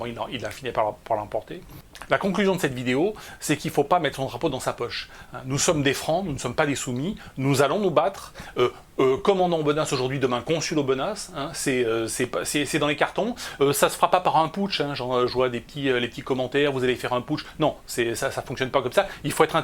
il a fini par l'emporter. La conclusion de cette vidéo, c'est qu'il ne faut pas mettre son drapeau dans sa poche. Nous sommes des francs, nous ne sommes pas des soumis, nous allons nous battre. Commandant Aubenas aujourd'hui, demain consul Aubenas, hein, c'est dans les cartons. Ça se fera pas par un putsch, hein, je vois les petits commentaires, vous allez faire un putsch. Non, ça fonctionne pas comme ça. Il faut être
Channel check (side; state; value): both; identical; correlation 1.00